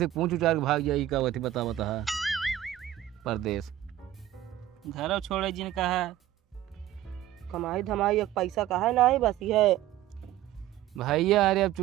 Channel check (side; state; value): left; quieter; 13.0 dB